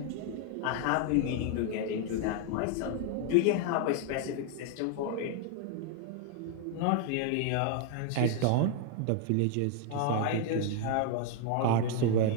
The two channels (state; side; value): different; both; correlation 0.00